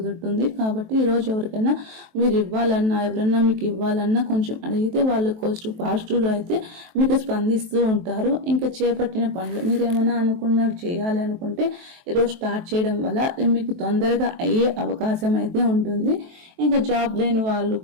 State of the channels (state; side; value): late; left; 23 ms